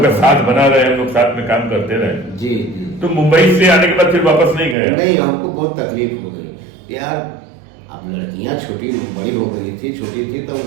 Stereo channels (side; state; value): left; drops out; at 4.8 s